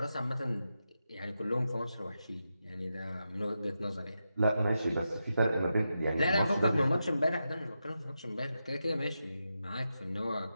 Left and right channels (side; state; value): both; inverted; correlation -0.88